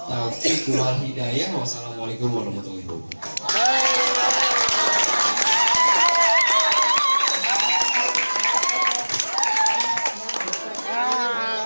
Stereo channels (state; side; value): inverted; both; correlation -1.00